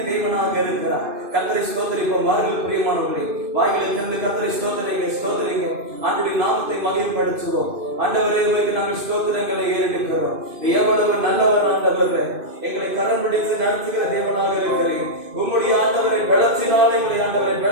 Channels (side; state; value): left; late; 2.5 ms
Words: தேவனாக இருக்கிறார். கர்த்தரை ஸ்தோத்தரிப்போம். வாருங்கள் பிரியமானவர்களே, வாய்களை திறந்து கர்த்தரை ஸ்தோத்தரிங்க. ஆண்டவருடைய நாமத்தை மகிமைப்படுத்துவோம். ஆண்டவரே, உங்களுக்கு நாங்கள் ஸ்தோத்திரங்களை ஏறெடுக்கிறோம். எவ்வளவு நல்லவர் ஆண்டவரே, எங்களை கரம் பிடித்து நடத்துகிற தேவனாக இருக்கிறீர். உம்முடைய ஆண்டவரை பலத்தினாலே எங்களை ஆண்டவரை